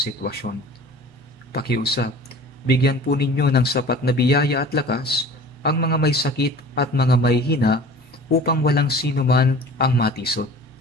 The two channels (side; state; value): both; normal; correlation 0.43